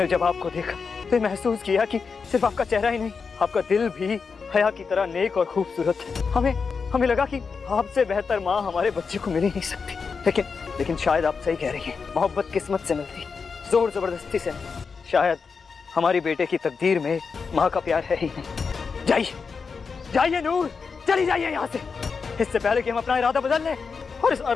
जब आपको देखा तो महसूस किया कि सिर्फ आपका चेहरा ही नहीं, आपका दिल भी हया की तरह नेक और खूबसूरत है। हमें लगा कि आपसे बेहतर माँ हमारे बच्चे को मिल ही नहीं सकती। लेकिन शायद आप सही कह रही हैं। मोहब्बत किस्मत से मिलती, जोर जबरदस्ती से नहीं। शायद हमारी बेटे की तकदीर में माँ का प्यार है ही नहीं। जाइए नूर, चली जाइए यहाँ से, इससे पहले कि हम अपना इरादा बदल लें, और इस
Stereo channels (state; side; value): quieter; right; 5.3 dB